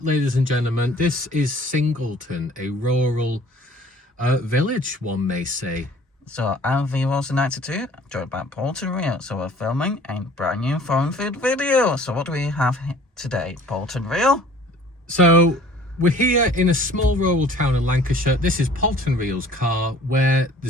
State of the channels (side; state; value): both; normal; correlation 0.51